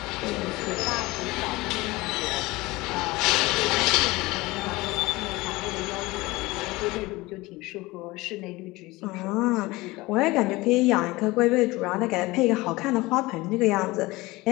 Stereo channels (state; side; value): quieter; right; 21.0 dB